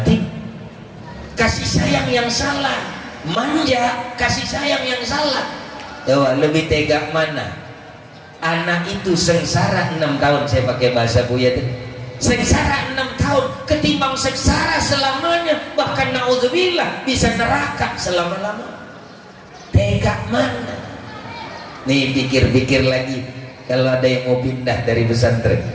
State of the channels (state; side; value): identical; both; correlation 1.00